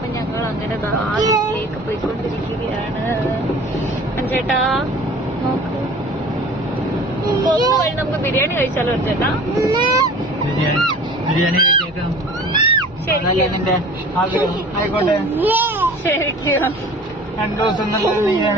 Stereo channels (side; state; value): both; normal; correlation 0.44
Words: ഞങ്ങൾ അങ്ങനെ വീട്ടിലേക്ക് പോയിക്കൊണ്ടിരിക്കുകയാണ്. അഞ്ചേട്ടാ നോക്ക്, പോകുന്ന വഴി നമുക്ക് ബിരിയാണി കഴിച്ചാലോ അച്ഛേട്ടാ? ശരിക്കും 2 ദിവസം